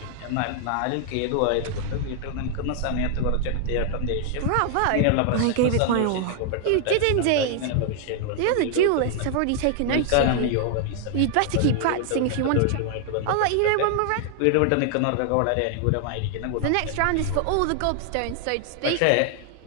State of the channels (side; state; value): both; different; correlation 0.00